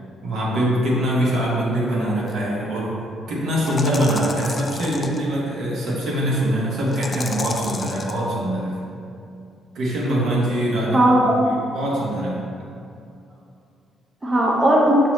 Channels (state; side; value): normal; both; correlation 0.70